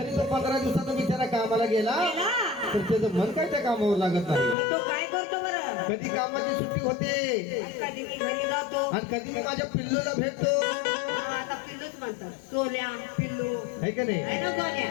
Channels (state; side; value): drops out; right; at 4.5 s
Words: तो 15 दिवसाचा बिचारा कामाला गेला गेला. तर त्याचं मन काय त्या कामावर लागत नाही. मग तो काय करतो बरं? कधी कामाची सुट्टी होते कधी मी घरी जातो. आणि कधी मी माझ्या पिल्लूला भेटतो, हा, आता पिल्लूच म्हणतात. सोन्या, पिल्लू. है का नाही. आहे ना सोन्या?